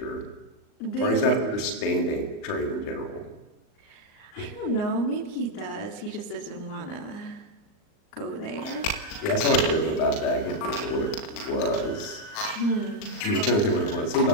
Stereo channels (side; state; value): right; late; 39 ms